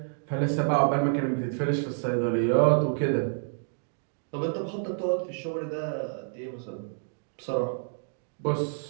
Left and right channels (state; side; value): silent; left; digital silence